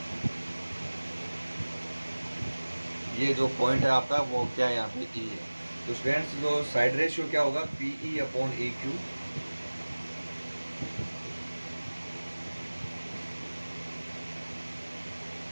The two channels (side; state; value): both; inverted; correlation -1.00